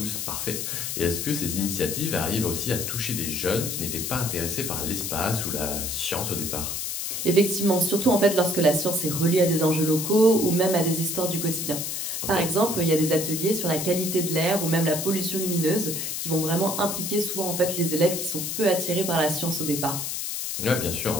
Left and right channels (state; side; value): noise; left; hiss, 3 dB below the sound